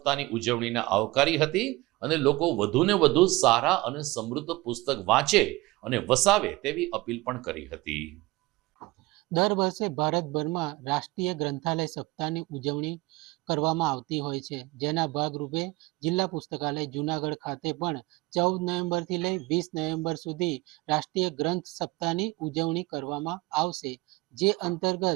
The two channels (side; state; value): left; quieter; 21.1 dB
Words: ઉજવણીને આવકારી હતી અને લોકો વધુને વધુ સારા અને સમૃદ્ધ પુસ્તક વાંચે અને વસાવે તેવી અપીલ પણ કરી હતી. દર વર્ષે ભારતભરમાં રાષ્ટ્રીય ગ્રંથાલય સપ્તાહની ઉજવણી કરવામાં આવતી હોય છે, જેના ભાગરૂપે જિલ્લા પુસ્તકાલય જૂનાગઢ ખાતે પણ 14 નવેમ્બરથી લઈ 20 નવેમ્બર સુધી રાષ્ટ્રીય ગ્રંથ સપ્તાહની ઉજવણી કરવામાં આવશે. જે